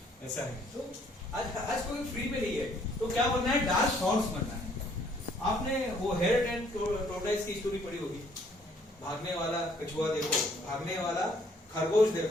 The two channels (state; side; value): normal; both; correlation 0.63